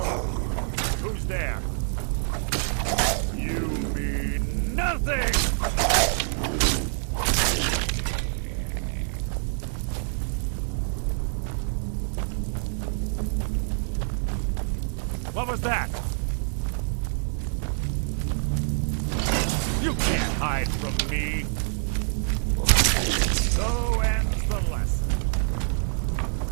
Who's there? You mean nothing! What was that? You can't hide from me. So ends the lesson.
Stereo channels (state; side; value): silent; left; digital silence